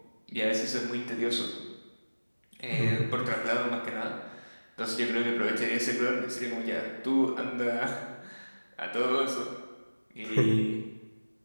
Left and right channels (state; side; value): inverted; both; correlation -1.00